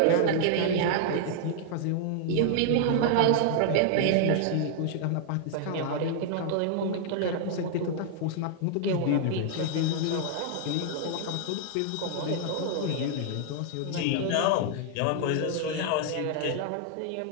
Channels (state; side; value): different; both; correlation 0.00